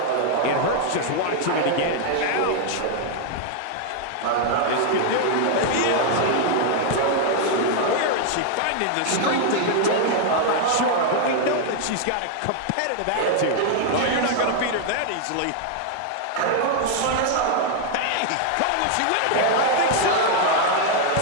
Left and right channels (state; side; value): different; both; correlation 0.00